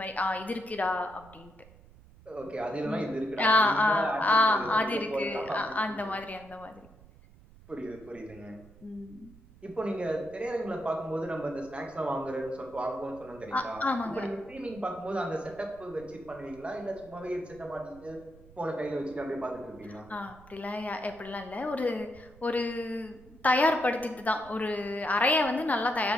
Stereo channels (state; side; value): noise; right; rumble, 23 dB below the sound